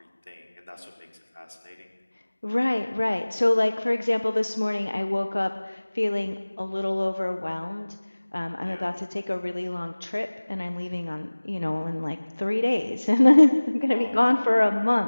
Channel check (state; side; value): inverted; both; correlation -1.00